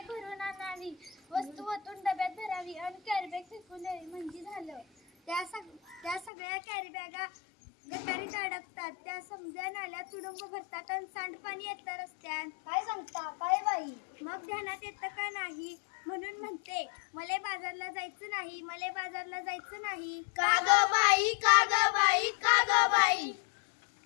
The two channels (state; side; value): drops out; right; at 6.3 s